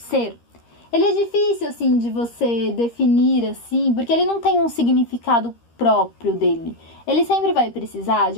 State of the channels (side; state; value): right; late; 13 ms